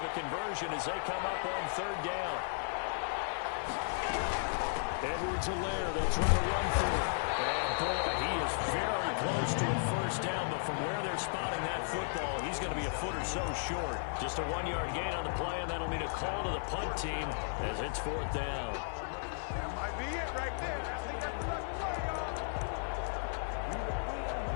a conversion as they come up on 3rd down. Edwards-Helaire, they'll try to run through it. And boy, he is very close to a first down, but from where they're spotting that football, he's going to be a a foot or so short. Just a 1-yard gain on the play, and that'll mean a call to the punt team as it's 4th down. That might be it right there. I think that's the play, y'all.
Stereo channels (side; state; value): right; silent; 54 dB below the other